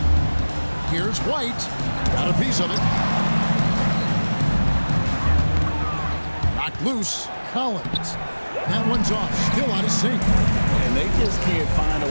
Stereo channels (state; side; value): inverted; both; correlation -1.00